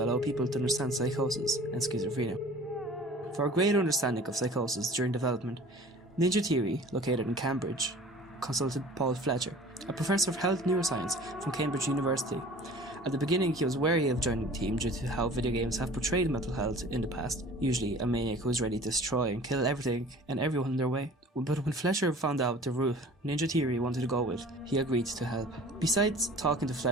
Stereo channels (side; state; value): both; normal; correlation 0.45